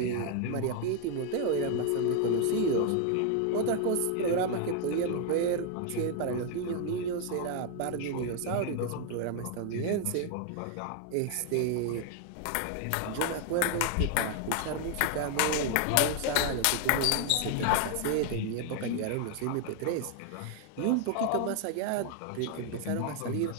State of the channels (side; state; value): both; different; correlation 0.00